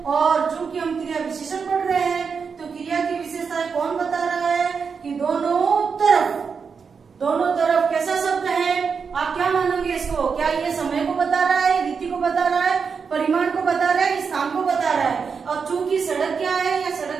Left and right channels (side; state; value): left; quieter; 5.8 dB